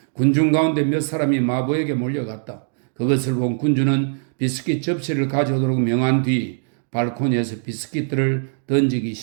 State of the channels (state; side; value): silent; left; digital silence